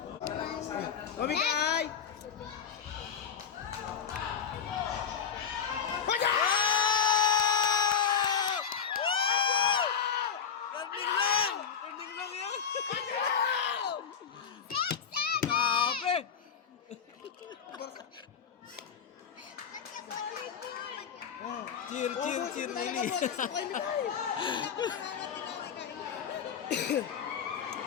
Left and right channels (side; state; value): right; quieter; 7.4 dB